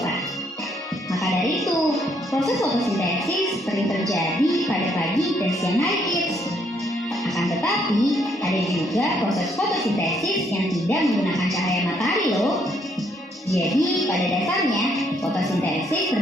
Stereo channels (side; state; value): both; normal; correlation 0.70